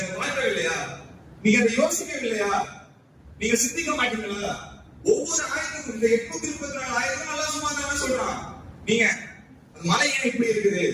அதை பார்க்கவில்லையா? நீங்க அதை யோசிக்கவில்லையா? நீங்க சிந்திக்க மாட்டீங்களா? ஒவ்வொரு ஆயத்துக்கும் இந்த 834 ஆயத்தும் அல்லாஹ் சுப்ஹானஹு வ தஆலா சொல்றான், நீங்க மலை ஏன் இப்படி இருக்குது,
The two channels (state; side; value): identical; both; correlation 1.00